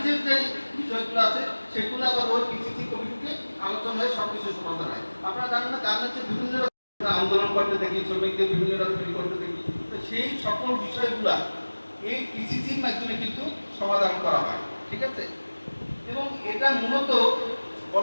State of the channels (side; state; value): both; inverted; correlation -1.00